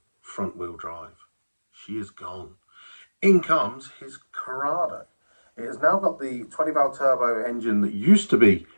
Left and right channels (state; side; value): inverted; both; correlation -1.00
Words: front-wheel drive. She is gone. In comes his Corrado. It has now got the 20-valve turbo engine that used to be